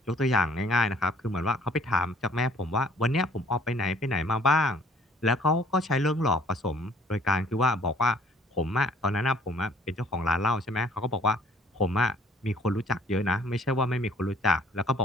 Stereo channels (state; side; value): normal; both; correlation 0.57